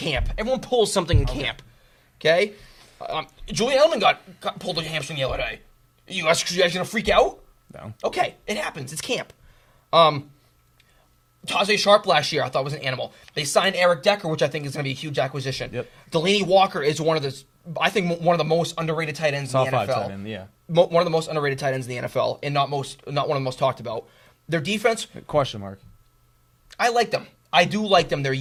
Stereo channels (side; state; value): both; identical; correlation 1.00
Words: Everyone pulls something in camp. Okay. Julian Edelman got pulled a hamstring the other day. You guys gonna freak out? No. Okay, it happens. It's camp. Tajay Sharp last year I thought was an animal. They signed Eric Decker, which I think is going to be a huge acquisition. Yep. Delaney Walker is one of the most underrated tight ends in the NFL. Tight end, yeah. One of the most underrated tight ends in the NFL, and not one of the most talked about. Their defense, question mark. I like them. I do like them. They're